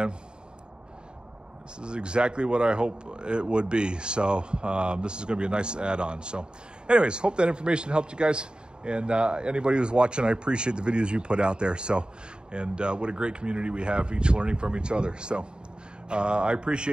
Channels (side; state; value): left; late; 0.049 ms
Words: this is exactly what I hope it would be. So this is going to be a nice add-on. So anyways, hope that information helped you guys. And anybody who's watching, I appreciate the videos you put out there. So, and what a great community we have, each learning from each other. So I